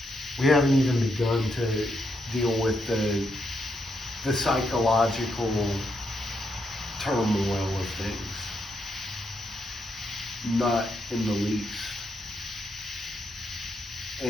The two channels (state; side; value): normal; both; correlation 0.80